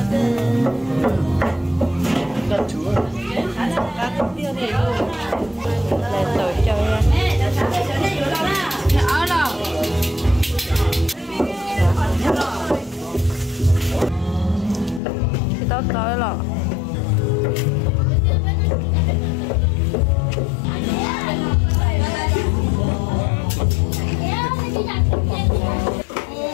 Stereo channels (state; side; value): drops out; right; at 15.0 s